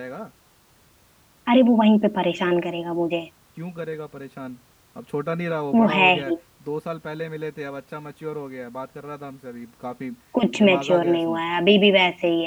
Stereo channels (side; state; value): both; identical; correlation 1.00